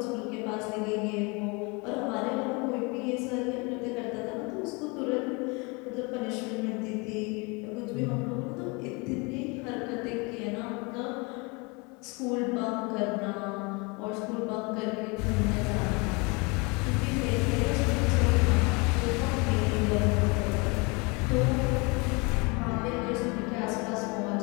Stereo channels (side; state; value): right; quieter; 28.9 dB